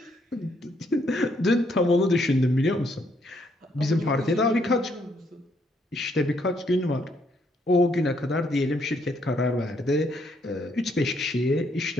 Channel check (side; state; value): both; normal; correlation 0.72